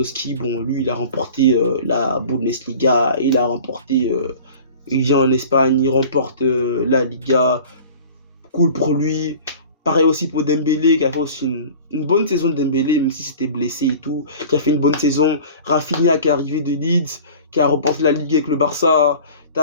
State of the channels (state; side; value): inverted; both; correlation -0.42